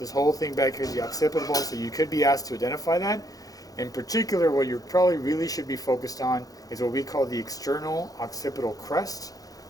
whole thing back here is the occipital bone, so you could be asked to identify that. In particular, what you probably really should be focused on is what we call the external occipital crest,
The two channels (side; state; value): right; late; 0.18 ms